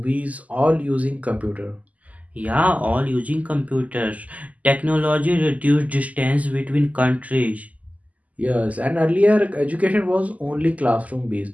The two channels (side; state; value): left; late; 0.074 ms